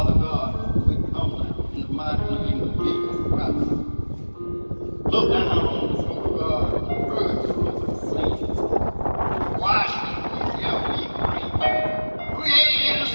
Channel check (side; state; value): both; inverted; correlation -1.00